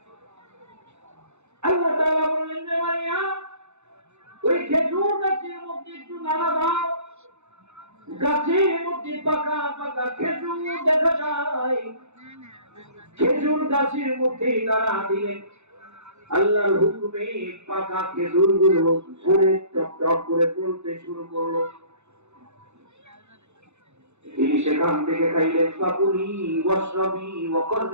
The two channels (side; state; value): left; late; 0.82 ms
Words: আল্লাহ তাআলা বললেন, যে মারিয়াম, ওই খেজুর গাছের মধ্যে একটু নাড়া দাও। গাছের মধ্যে পাকা পাকা খেজুর দেখা যায়। খেজুর গাছের মধ্যে নাড়া দিলেন, আল্লাহর হুকুমে পাকা খেজুর গুলো ঝরে টপ টপ করে পড়তে শুরু করলো। তিনি সেখান থেকে খাইলেন, ফাকুলি ওয়াশরাবি